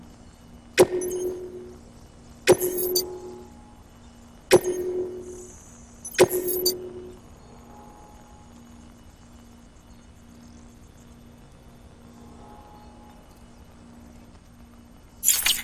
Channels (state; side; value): identical; both; correlation 1.00